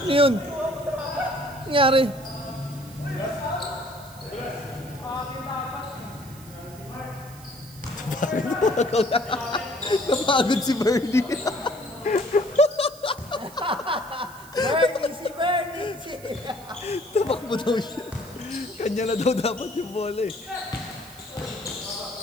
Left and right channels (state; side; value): noise; right; hiss, 20 dB below the sound